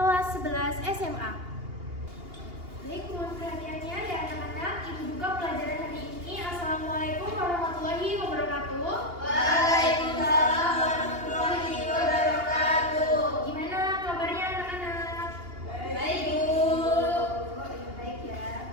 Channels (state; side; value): late; left; 2.8 ms